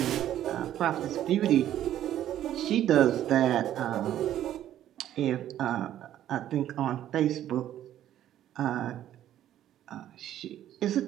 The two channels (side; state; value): left; quieter; 11.8 dB